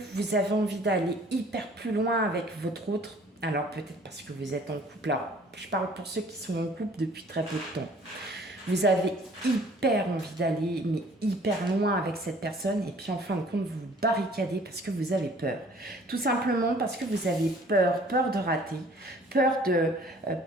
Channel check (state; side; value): normal; both; correlation 0.54